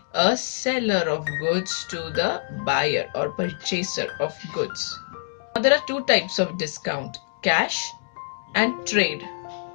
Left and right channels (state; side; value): silent; right; digital silence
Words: a seller of goods to the buyer or purchaser of goods. Now there are two types of discount, cash and trade.